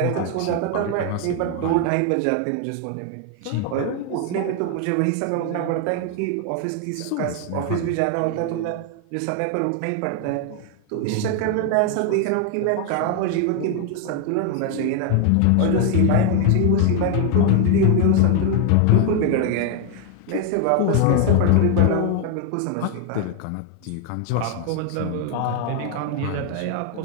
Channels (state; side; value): different; both; correlation 0.01